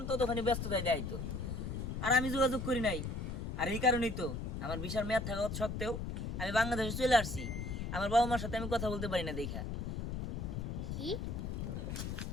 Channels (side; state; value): left; noise; rumble, 4 dB below the sound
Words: ততক্ষণই ব্যস্ততায় দেখাইতো। আর আমি যোগাযোগ করি নাই। আর এই কারণেই তো আমার ভিসার মেয়াদ থাকা সত্ত্বেও আমি বাংলাদেশে চলে আসছি। আমার বাবা মার সাথে আমি কথা বলতে পারি না দেখা। কি